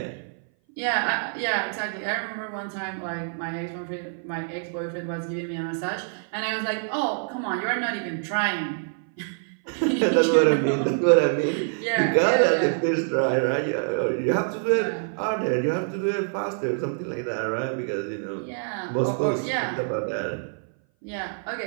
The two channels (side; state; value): left; silent; 58 dB below the other